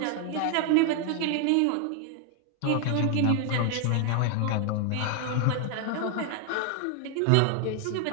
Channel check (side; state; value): both; different; correlation 0.00